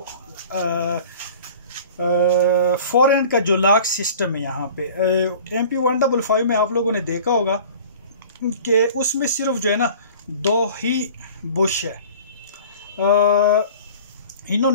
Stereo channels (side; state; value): both; inverted; correlation -0.45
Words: फोर एंड का जो लॉक सिस्टम है। यहाँ पे MP 155 में आप लोगों ने देखा होगा कि उसमें सिर्फ जो है ना दो ही बुश है।